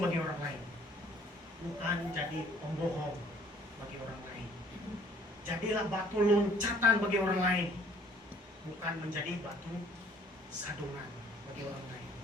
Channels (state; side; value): normal; both; correlation 0.56